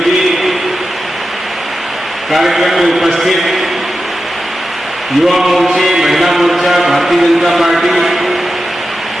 जी, कार्यक्रम में उपस्थित युवा मोर्चे, महिला मोर्चा, भारतीय जनता पार्टी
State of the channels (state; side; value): normal; both; correlation 0.91